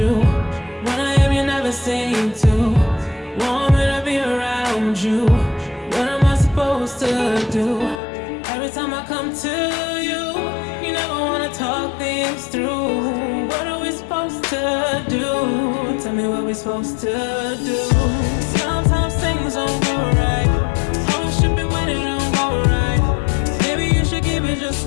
When I am, you never seem to want me to be around you. What am I supposed to do? Every time I come to you, you never wanna talk things through. What are we supposed to do? Tell me what we're supposed to do. Sometimes things don't go right. Always tripping when it don't go right. Maybe you should give it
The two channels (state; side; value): drops out; right; at 8.0 s